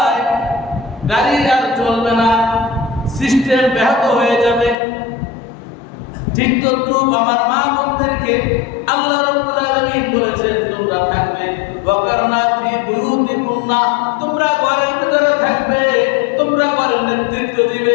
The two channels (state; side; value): drops out; right; at 4.8 s